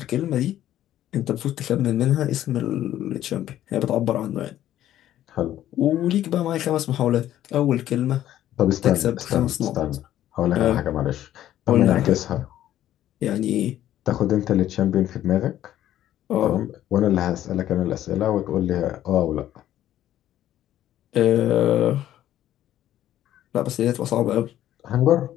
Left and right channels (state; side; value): quieter; right; 12.5 dB